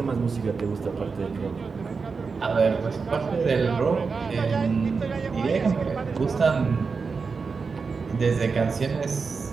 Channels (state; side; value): quieter; left; 4.9 dB